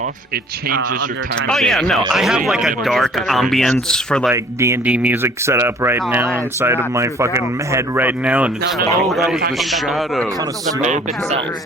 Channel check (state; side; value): normal; both; correlation 0.54